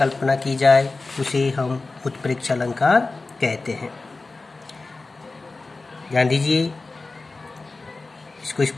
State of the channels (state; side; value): quieter; right; 3.6 dB